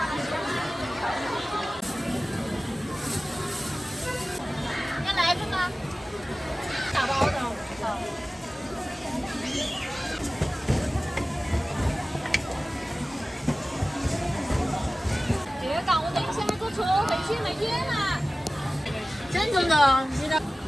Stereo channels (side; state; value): both; normal; correlation 0.97